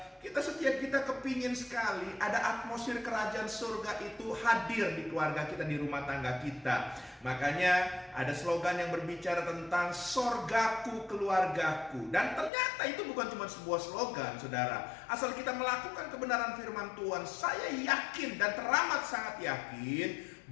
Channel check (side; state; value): right; drops out; at 12.5 s